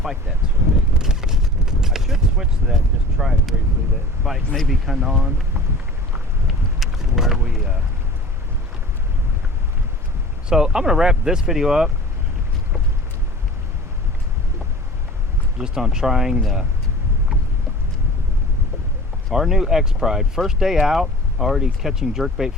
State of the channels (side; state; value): both; normal; correlation 0.42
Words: fight that swim bait. I should switch to that and just try it briefly. That bite may be kind of on to where we. So I'm gonna wrap this video up just on trying our new Expride. First day out, already catching jerkbait